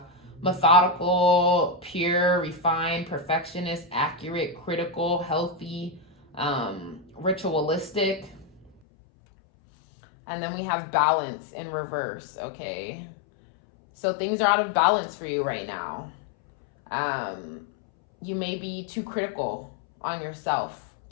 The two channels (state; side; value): drops out; right; at 8.7 s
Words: methodical, pure, refined, perfectionist, accurate, critical, healthy, ritualistic. And then we have balance in reverse, okay? So things are out of balance for you right now. You may be too critical on yourself,